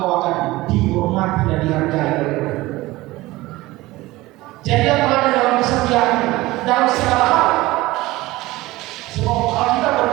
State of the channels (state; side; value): quieter; left; 19.1 dB